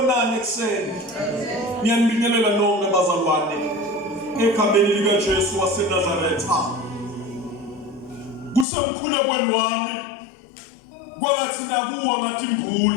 ekseni. Ngiyanibingelela nonke bazalwane ekhambeni lika Jesu waseNazaretha. Kusemkhulekweni wami kwangathi nakuwa ngathi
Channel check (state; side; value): drops out; right; at 8.7 s